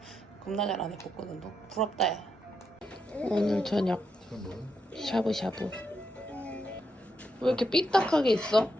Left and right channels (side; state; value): both; normal; correlation 0.82